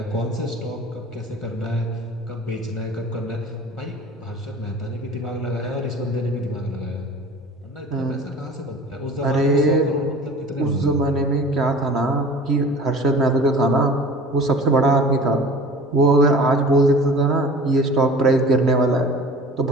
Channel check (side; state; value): both; normal; correlation 0.42